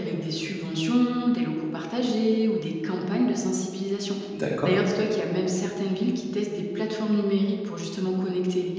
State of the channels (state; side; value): identical; both; correlation 1.00